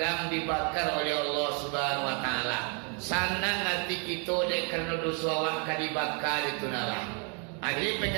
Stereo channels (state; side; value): quieter; left; 37.3 dB